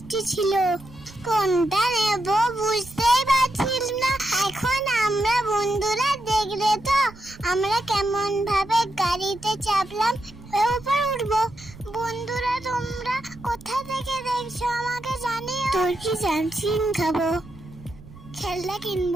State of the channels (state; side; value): noise; right; rumble, 19 dB below the sound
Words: ছিল। কোনটা নেব বুঝতেই পারছিলাম না। এখন আমরা বন্ধুরা দেখলে তো আমরা কেমন ভাবে গাড়িতে চাপলাম, উপর উঠবো। বন্ধুরা তোমরা কোথা থেকে দেখছো আমাকে জানিও। তোর কি জামচিন খাবো, খেলনা